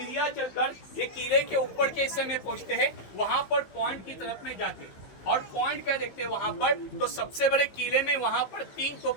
चलकर ये किले के ऊपर के हिस्से में पहुंचते हैं, वहां पर पॉइंट की तरफ में जाते हैं। और पॉइंट क्या देखते हैं वहां पर, तो सबसे बड़े किले में वहां पर 3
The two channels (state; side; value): late; right; 15 ms